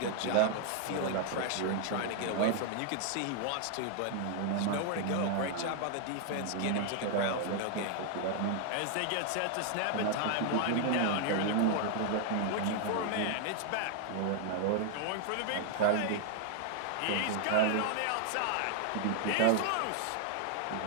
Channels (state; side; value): different; both; correlation 0.00